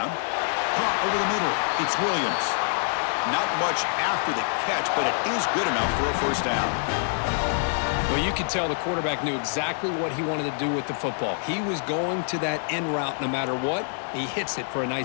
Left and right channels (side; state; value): right; silent; 61 dB below the other